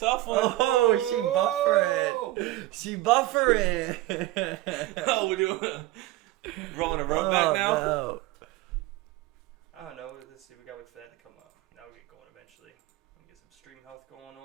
a tough one. Oh, she buffering. Oh, we're doing rolling a rope back now. No. I don't know. Let's see. We gotta wait for that to come up. Now we'll get going eventually. We'll get some stream health going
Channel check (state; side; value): quieter; left; 16.7 dB